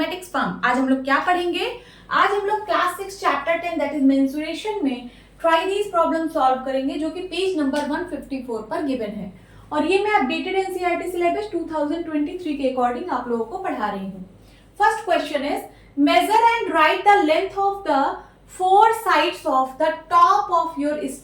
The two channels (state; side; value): identical; both; correlation 1.00